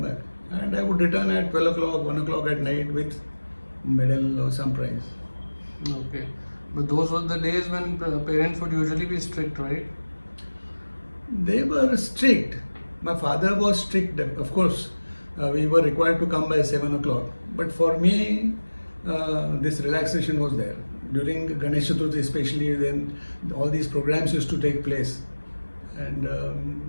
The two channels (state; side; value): inverted; both; correlation -1.00